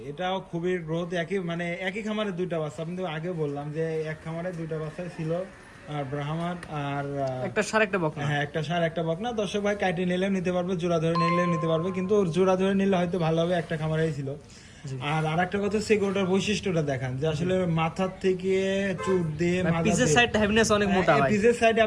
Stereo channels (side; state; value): both; identical; correlation 1.00